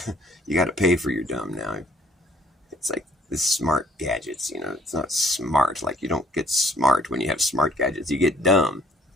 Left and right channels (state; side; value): normal; both; correlation 0.60